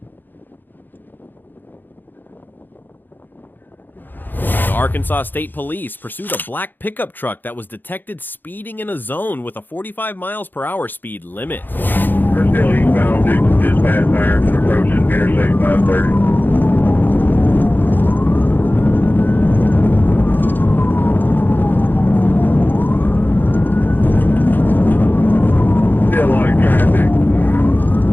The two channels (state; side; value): late; right; 0.090 ms